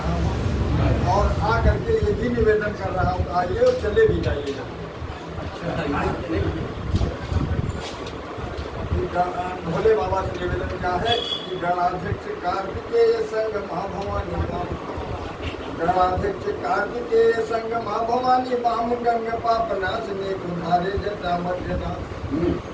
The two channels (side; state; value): both; identical; correlation 1.00